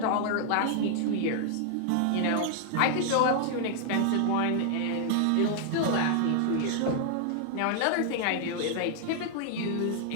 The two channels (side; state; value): both; different; correlation -0.01